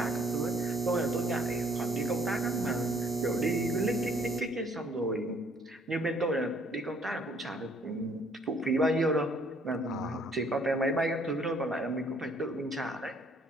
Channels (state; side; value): normal; both; correlation 0.62